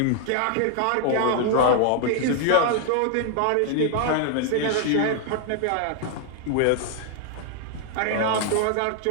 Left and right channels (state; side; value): different; both; correlation 0.00